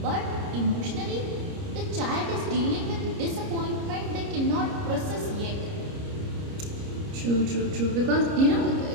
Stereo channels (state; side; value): late; left; 30 ms